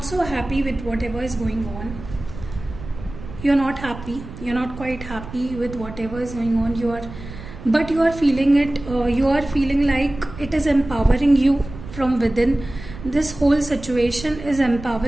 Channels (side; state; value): right; noise; rumble, 13 dB below the sound